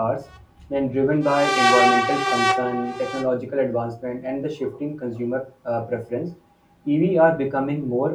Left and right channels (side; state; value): both; identical; correlation 1.00